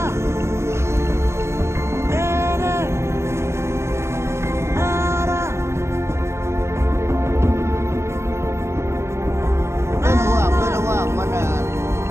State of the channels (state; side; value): late; left; 0.13 ms